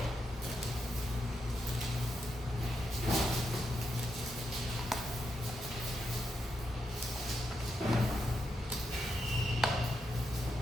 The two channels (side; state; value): both; normal; correlation 0.84